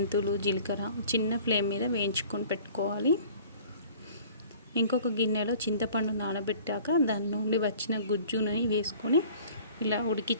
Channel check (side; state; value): both; inverted; correlation -0.49